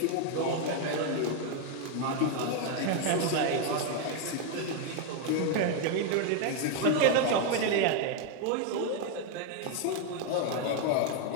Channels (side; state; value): both; different; correlation 0.01